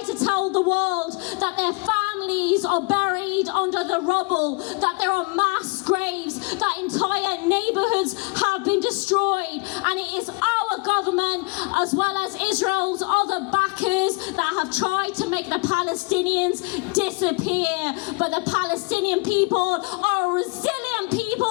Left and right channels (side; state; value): right; quieter; 31.3 dB